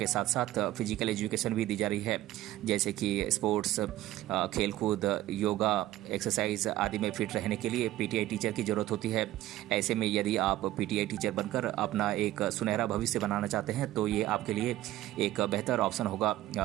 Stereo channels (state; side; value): quieter; left; 15.0 dB